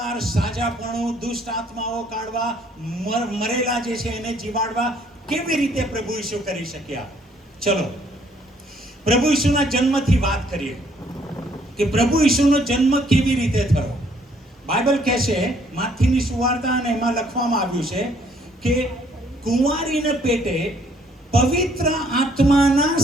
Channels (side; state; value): both; normal; correlation 0.64